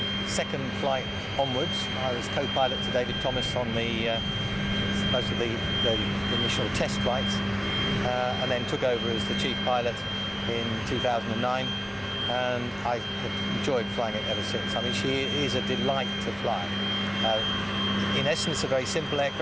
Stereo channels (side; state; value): both; identical; correlation 1.00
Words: second flight onwards. I was co-pilot to David Thomas on most of the initial test flights, and then took over as the chief pilot in 2009, and I have enjoyed flying it ever since. I mean, she is a delight to fly. In essence, a very simple